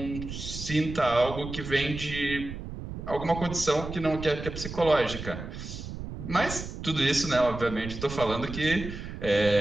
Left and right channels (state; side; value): noise; right; rumble, 9 dB below the sound